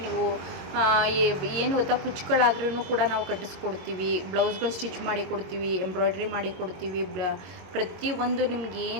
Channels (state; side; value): late; left; 22 ms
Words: ನೀವು ಏನು ಗೊತ್ತಾ, ಕುಚ್ಚುಗಳಾದ್ರೂ ಕೂಡ ನಾವು ಕಟ್ಟಿಸ್ಕೊಡ್ತೀವಿ, ಬ್ಲೌಸ್ಗಳು ಸ್ಟಿಚ್ ಮಾಡಿ ಕೊಡ್ತೀವಿ, ಎಂಬ್ರಾಯ್ಡ್ರಿ ಮಾಡಿ ಕೊಡ್ತೀವಿ. ಪ್ರತಿಯೊಂದು